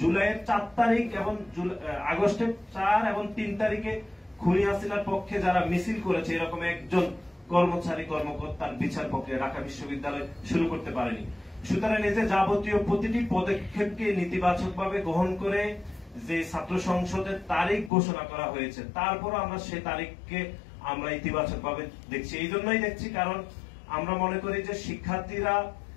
জুলাইয়ের 4 তারিখ এবং আগস্টের 4 এবং 3 তারিখে খুনি হাসিনার পক্ষে যারা মিছিল করেছে এরকম একজন কর্মকর্তার বিচার প্রক্রিয়া ঢাকা বিশ্ববিদ্যালয় শুরু করতে পারেনি। সুতরাং এই যে যাবতীয় প্রতিটি পদক্ষেপকে নেতিবাচকভাবে গ্রহণ করে যে ছাত্র সংসদের তারিখ ঘোষণা করা হয়েছে, তারপরও আমরা সেই তারিখকে আমরা ইতিবাচকভাবে দেখছি। এই জন্যই দেখছি কারণ আমরা মনে করি যে শিক্ষার্থীরা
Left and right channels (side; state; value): right; drops out; at 17.9 s